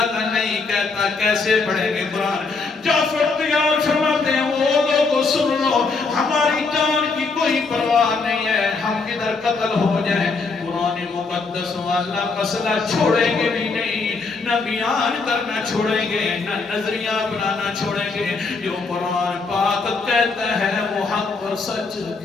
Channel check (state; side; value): quieter; right; 4.2 dB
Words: کا نہیں کہتا، کیسے پڑھیں گے قرآن؟ جعفر تیار فرماتے ہیں وہ لوگوں سن لو، ہماری جان کی کوئی پرواہ نہیں ہے، ہم کدھر قتل ہو جائیں قرآن مقدس والا مسئلہ چھوڑیں گے بھی نہیں، نہ بیان کرنا چھوڑیں گے، نہ نظریہ بنانا چھوڑیں گے. جو قرآن پاک کہتا ہے وہ حق اور سچ